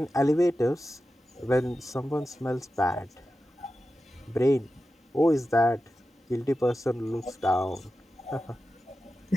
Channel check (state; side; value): normal; both; correlation 0.92